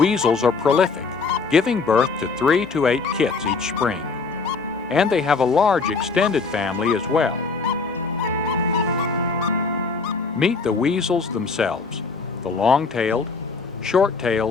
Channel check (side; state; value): right; quieter; 4.5 dB